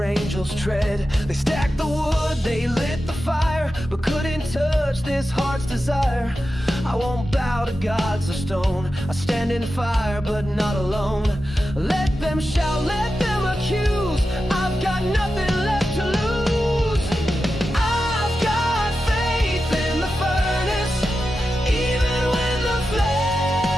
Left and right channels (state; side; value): normal; both; correlation 0.91